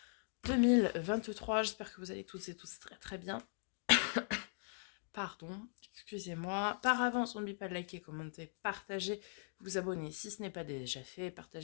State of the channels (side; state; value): right; silent; digital silence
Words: 2023. J'espère que vous allez toutes et tous très très bien. Pardon, excusez-moi. Par avance, n'oubliez pas de liker, commenter, partager, vous abonner si ce n'est pas déjà fait,